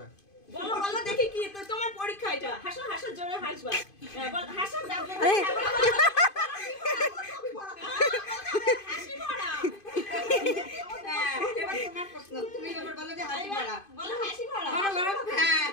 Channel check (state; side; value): late; right; 2.5 ms